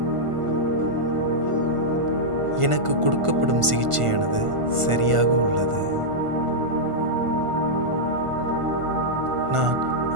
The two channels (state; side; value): late; left; 1.5 ms